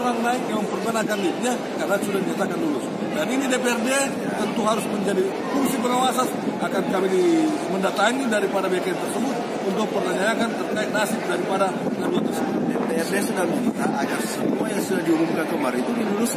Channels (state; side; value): identical; both; correlation 1.00